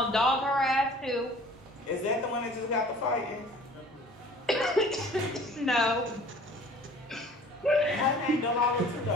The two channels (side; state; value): both; normal; correlation 0.49